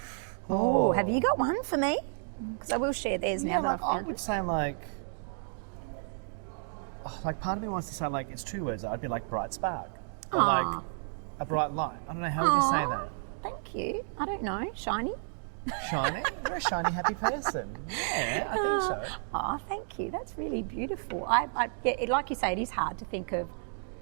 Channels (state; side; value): silent; left; digital silence